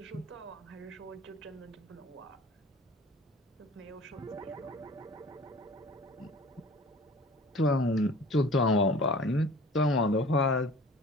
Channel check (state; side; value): normal; both; correlation 0.45